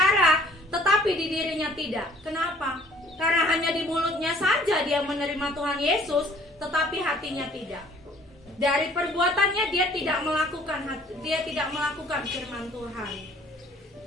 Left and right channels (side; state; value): both; normal; correlation 0.56